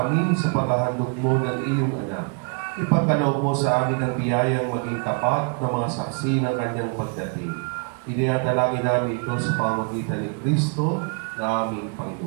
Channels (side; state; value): left; quieter; 39.4 dB